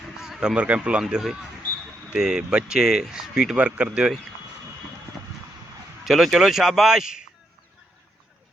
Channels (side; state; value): both; normal; correlation 0.79